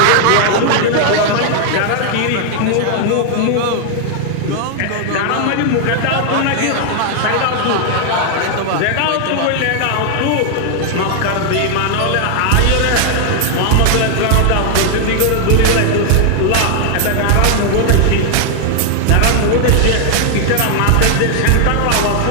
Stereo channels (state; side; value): different; both; correlation 0.00